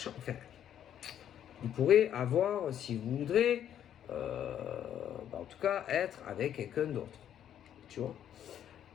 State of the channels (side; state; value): right; quieter; 10.1 dB